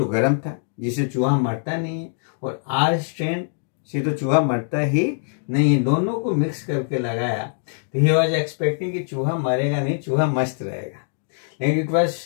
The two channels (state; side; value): silent; right; digital silence